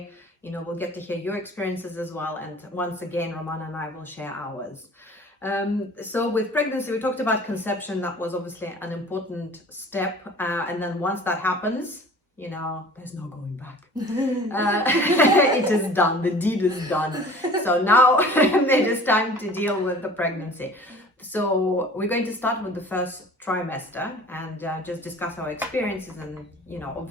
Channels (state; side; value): normal; both; correlation 0.45